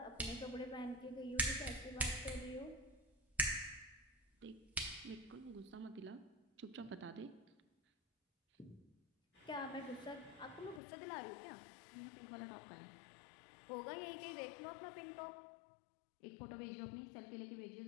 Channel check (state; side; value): drops out; right; at 10.8 s